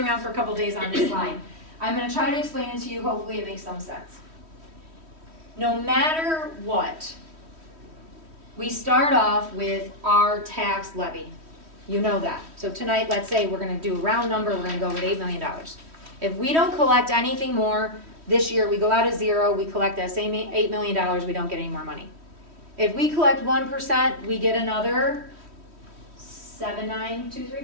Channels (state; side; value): late; left; 3.1 ms